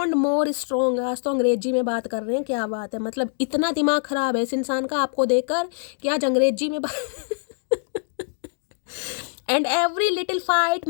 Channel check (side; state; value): right; silent; 63 dB below the other